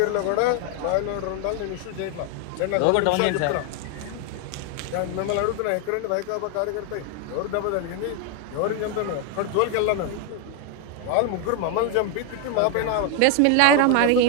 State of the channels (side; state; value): both; different; correlation 0.01